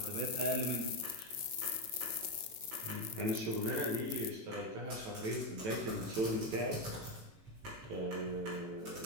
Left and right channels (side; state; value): left; late; 18 ms